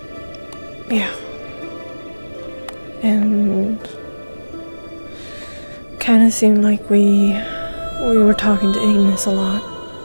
Yeah. And kind of seemed like we were talking to Ignis a lot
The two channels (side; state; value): both; inverted; correlation -1.00